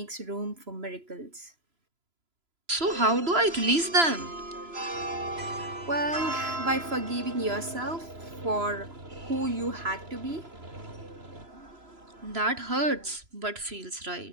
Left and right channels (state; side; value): late; left; 3.0 ms